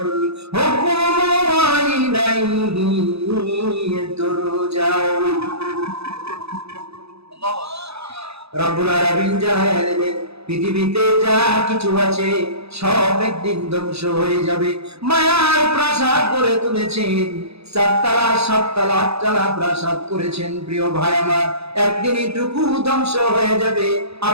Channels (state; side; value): late; left; 0.79 ms